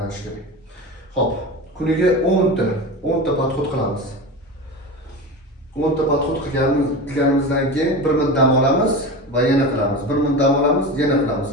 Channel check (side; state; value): both; normal; correlation 0.26